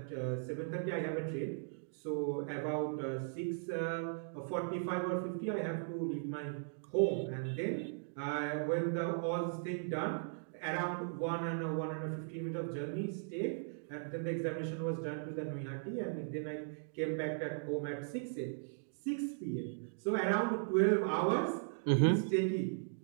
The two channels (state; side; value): silent; left; digital silence